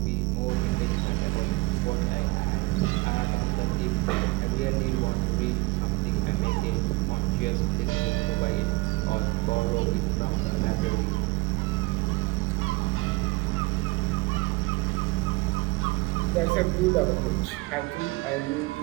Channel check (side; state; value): left; quieter; 22.8 dB